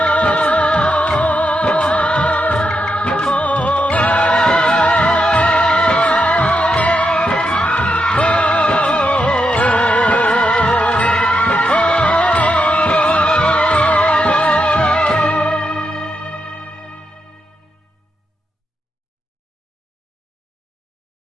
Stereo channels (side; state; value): both; normal; correlation 0.84